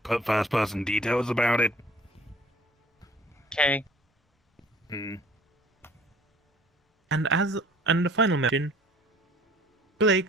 first person details about it. Okay. Hmm. And the final mention,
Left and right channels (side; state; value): both; normal; correlation 0.53